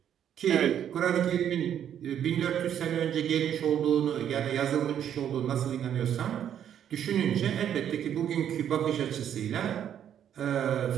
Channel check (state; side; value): quieter; left; 9.6 dB